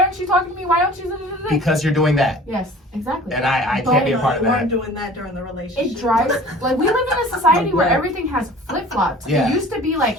aren't you talking to me? Why don't you? because you're doing that, Yes, exactly. and I can't be a part of You weren't that. doing that during the relationship. It drives like we live in a society where Right. everything has flip flops. Yeah. It used to be like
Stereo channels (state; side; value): normal; both; correlation 0.45